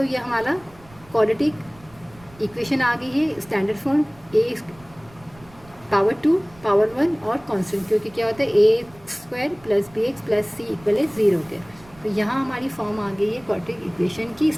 ये हमारा क्वाड्रेटिक इक्वेशन आ गई है, standard form A power 2 power 1 और कांस्टेंट, क्योंकि क्या होता है A square plus B X plus C equal है 0 के। तो यहाँ हमारी फॉर्म आ गई है क्वाड्रेटिक इक्वेशन की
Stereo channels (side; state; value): right; noise; rumble, 25 dB below the sound